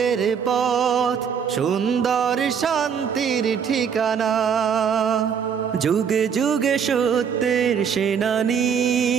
পথ, সুন্দর শান্তির ঠিকানা। যুগে যুগে সত্যের সেনানী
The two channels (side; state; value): left; quieter; 7.2 dB